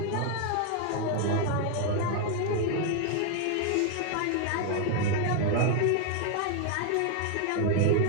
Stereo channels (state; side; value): different; both; correlation 0.00